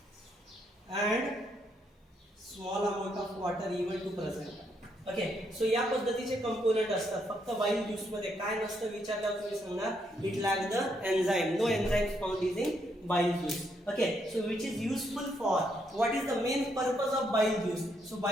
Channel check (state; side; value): normal; both; correlation 0.75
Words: and small amount of water even to present. Okay, so या पद्धतीचे कंपोनेंट असतात. फक्त बाईल ज्यूस मध्ये काय नसतं विचारल्यावर तुम्ही सांगणार it lack the enzyme. No enzyme found is in bile juice. Okay, so which is useful for, what is the main purpose of bile juice? So